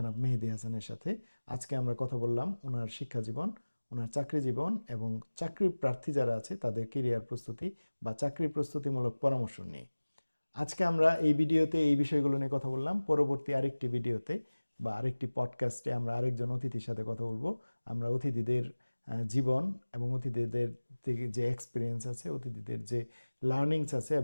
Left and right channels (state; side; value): inverted; both; correlation -1.00